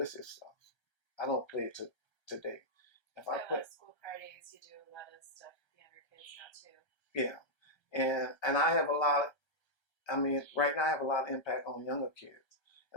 stuff. I don't play it today. If I play school parties, you do a lot of stuff with younger kids now too. Yeah, and I have a lot. Right now I have a lot of impact on younger kids,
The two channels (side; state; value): right; late; 1.3 ms